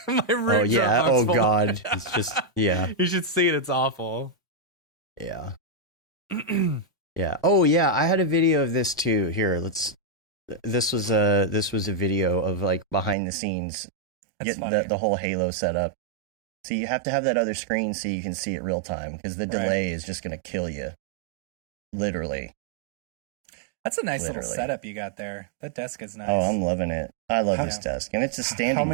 My root oh yeah. Dropbox Oh folder. god. It's just yeah. You should see it. It's awful. Yeah. Yeah. Oh yeah. I had a video of this too. Here, This was a video of like behind the scenes, getting the whole Halo setup. So you have to have that other screen so you can see it real time, because the delay is just going to kill you. Literally. That's a nice little setup you got there. That desk is nice. Oh, I'm loving it. I love this desk, and it's a standing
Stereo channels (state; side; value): drops out; left; at 13.2 s